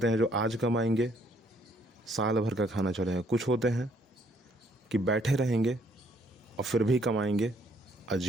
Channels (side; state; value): both; normal; correlation 0.67